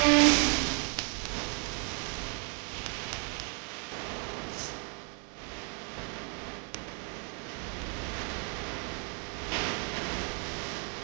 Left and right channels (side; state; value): left; quieter; 37.9 dB